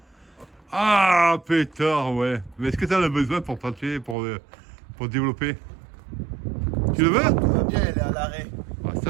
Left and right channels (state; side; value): drops out; left; at 4.2 s